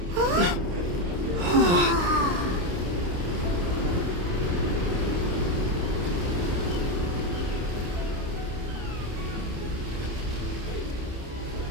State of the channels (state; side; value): late; left; 29 ms